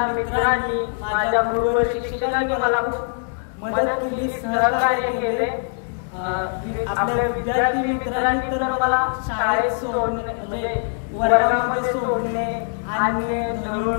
मित्रांनी माझ्या गुरुवर शिक्षकांनी मला खूप मदत केली, सहकार्य केले. आपल्या विद्यार्थी मित्रांनी तर मला शाळेत सोडणे म्हणजे वर्गामध्ये सोडणे आणि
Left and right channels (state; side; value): silent; right; 64 dB below the other